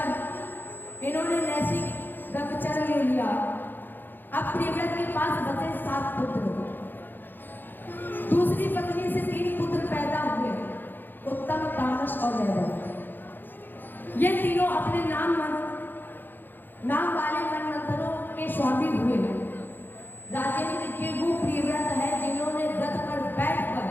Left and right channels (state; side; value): late; right; 0.092 ms